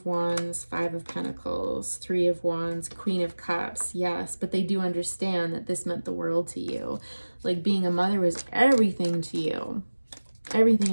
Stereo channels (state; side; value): inverted; both; correlation -1.00